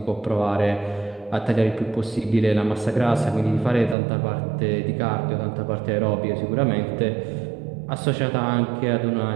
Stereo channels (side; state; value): left; drops out; at 4.0 s